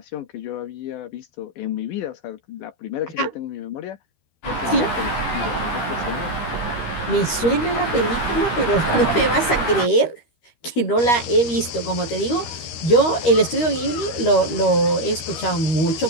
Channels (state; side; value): late; right; 13 ms